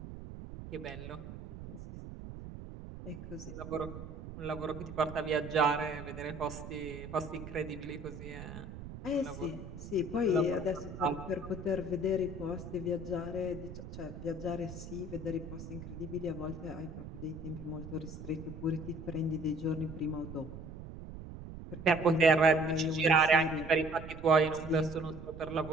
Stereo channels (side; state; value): right; noise; rumble, 11 dB below the sound